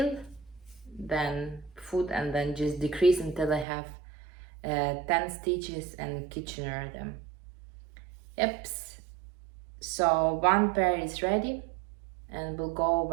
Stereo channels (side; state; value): left; drops out; at 3.7 s